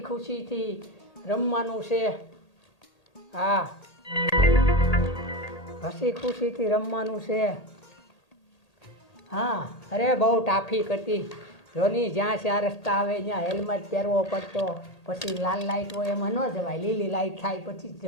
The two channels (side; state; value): right; late; 1.8 ms